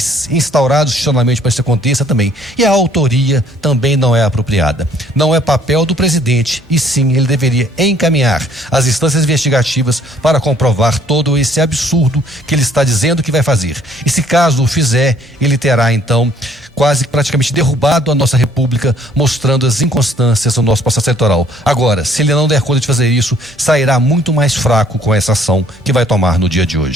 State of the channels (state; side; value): normal; both; correlation 0.61